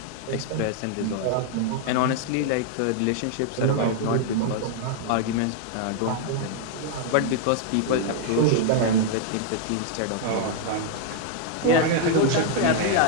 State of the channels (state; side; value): different; both; correlation 0.00